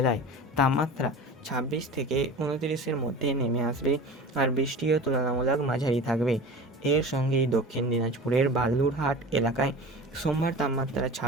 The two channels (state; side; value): normal; both; correlation 0.35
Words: তাপমাত্রা 26 থেকে 29-এর মধ্যে নেমে আসবে আর বৃষ্টিও তুলনামূলক মাঝারি থাকবে। এর সঙ্গেই দক্ষিণ দিনাজপুরের বালুরহাট এলাকায় সোমবার তাপমাত্রা